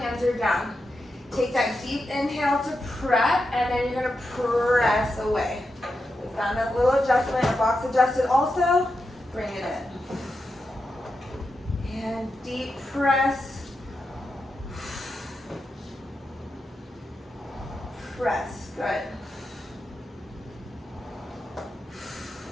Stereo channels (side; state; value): both; normal; correlation 0.88